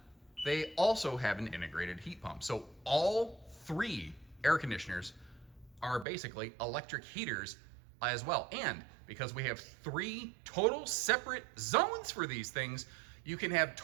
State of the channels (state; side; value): drops out; left; at 6.1 s